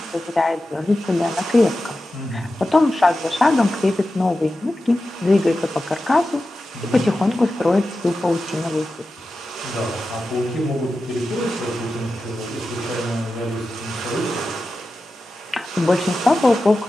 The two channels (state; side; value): normal; both; correlation 0.93